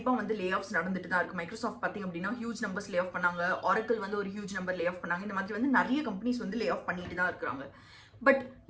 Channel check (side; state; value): both; identical; correlation 1.00